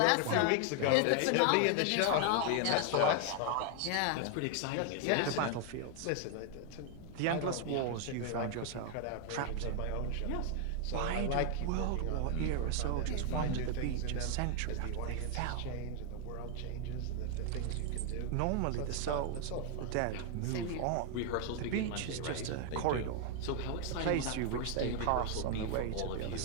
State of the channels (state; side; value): different; both; correlation 0.00